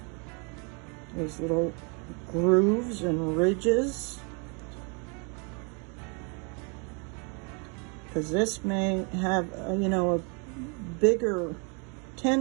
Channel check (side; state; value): left; quieter; 34.9 dB